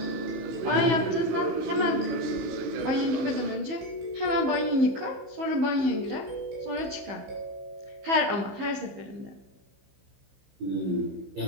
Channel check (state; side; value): late; left; 15 ms